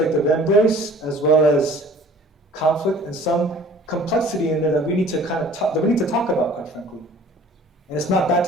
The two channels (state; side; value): normal; both; correlation 0.49